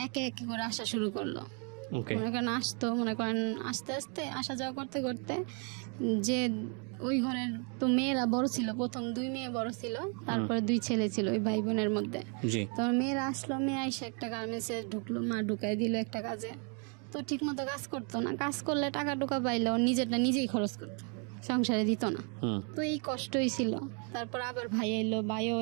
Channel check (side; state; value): left; quieter; 38.2 dB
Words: একে একে করে আসা শুরু করলো। মনে করেন আসতো, মনে করেন আস্তে আস্তে আসা যাওয়া করতে করতে, যে ওই ঘরের তো মেয়েরা বড় ছিল, প্রথম 2 মেয়ে বড় ছিল, তারপরে 2 ছেলে ছিল ওই ভাই বোনের মধ্যে। তো মেয়েরা আসলো, মেয়ে এসে একটা গার্মেন্টসে ঢুকলো, মা ঢুকাই দিল একটা কাজে। তো ঠিক মতো কাজ করতো না, কাজ করলে টাকা টুকা পাইলে ও নিজেরটা নিজেই খরচ করতো, সংসারে দিত না। তো এই কষ্টই ছিল। তারপর আবার ভাই এলো, ভাইও